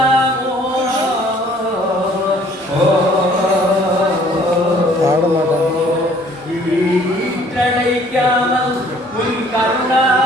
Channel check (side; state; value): both; normal; correlation 0.57